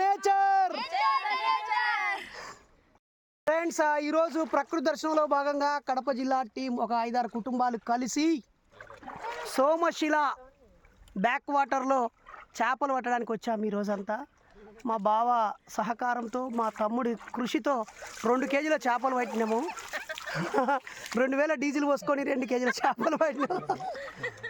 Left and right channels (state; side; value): identical; both; correlation 1.00